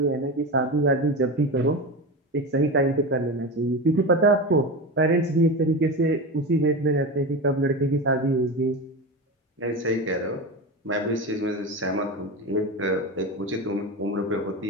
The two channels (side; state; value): both; normal; correlation 0.23